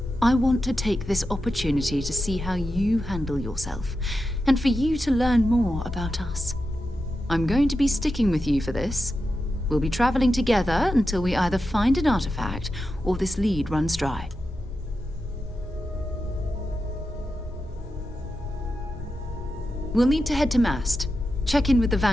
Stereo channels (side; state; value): both; normal; correlation 0.90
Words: I want to take this opportunity to see how you handle yourself, and for you to learn more about us. I'm going to be sticking with you for this. We'll be traveling together until we either find an artifact or this lead runs dry. We'll need to head to Mast. Check in with the